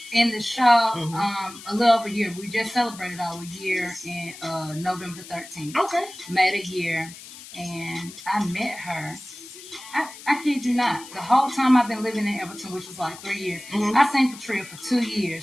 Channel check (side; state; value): left; noise; hiss, 16 dB below the sound